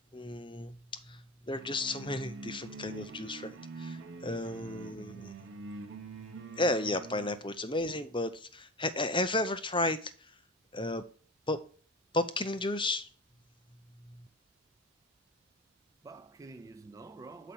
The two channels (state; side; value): normal; both; correlation 0.29